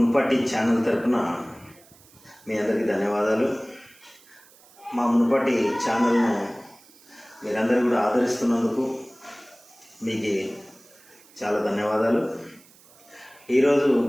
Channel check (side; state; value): right; noise; hiss, 26 dB below the sound